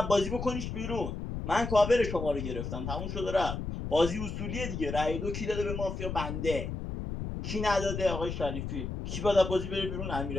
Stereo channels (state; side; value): noise; left; rumble, 5 dB below the sound